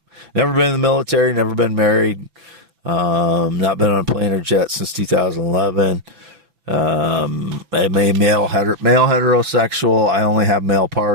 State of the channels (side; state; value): left; late; 6.0 ms